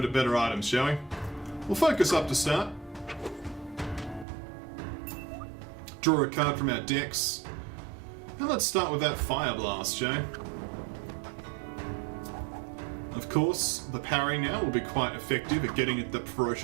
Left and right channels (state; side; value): drops out; left; at 4.2 s